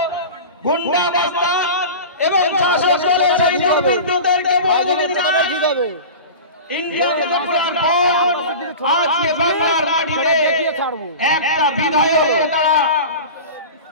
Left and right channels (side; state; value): both; inverted; correlation -0.32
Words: গুন্ডা বাস্তান এবং শাসক দলের সেই দুর্বৃত্তদেরকে বলতে চাই, ইন্ডিয়াকে টুকরার পর আজকে বাংলার মাটিতে একটা বিধায়ককে তারা